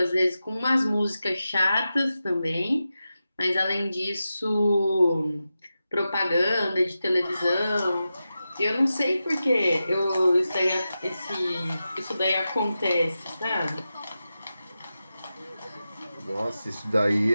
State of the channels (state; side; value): inverted; both; correlation -0.92